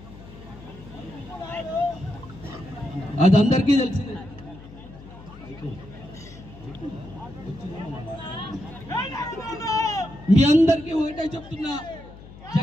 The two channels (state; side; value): noise; left; hum, 18 dB below the sound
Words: అది అందరికీ తెలిసింది. మీ అందరికీ ఒకటే చెప్తున్నా,